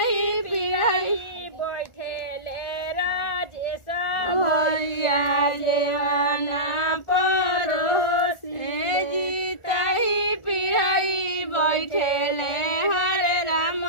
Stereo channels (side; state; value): right; late; 1.4 ms